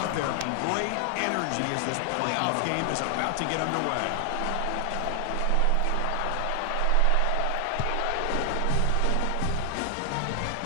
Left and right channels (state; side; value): different; both; correlation 0.00